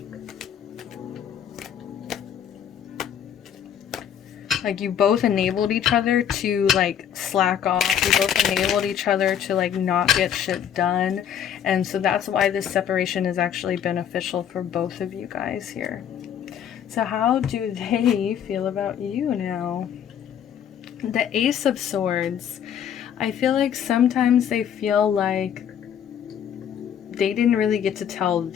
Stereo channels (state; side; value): quieter; right; 9.1 dB